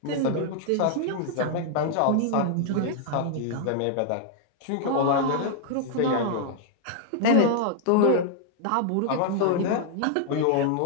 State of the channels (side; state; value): both; different; correlation -0.01